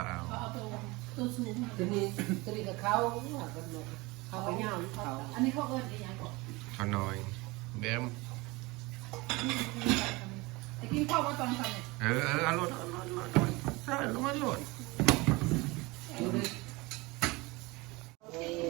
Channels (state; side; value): quieter; left; 23.5 dB